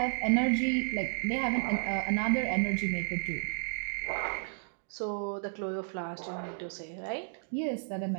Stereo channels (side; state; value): left; silent; digital silence